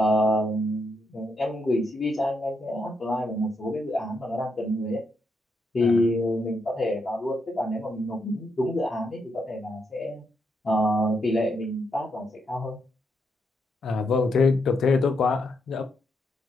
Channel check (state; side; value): normal; both; correlation 0.80